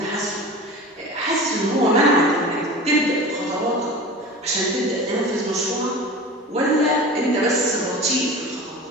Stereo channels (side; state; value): both; normal; correlation 0.35